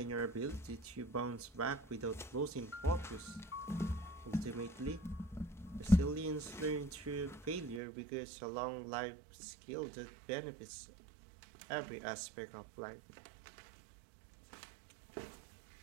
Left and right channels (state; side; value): drops out; left; at 7.8 s